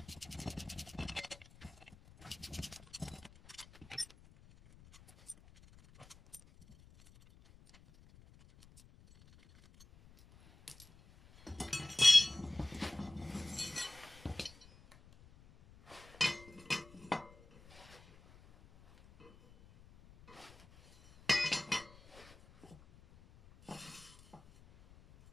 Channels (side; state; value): left; noise; rumble, 22 dB below the sound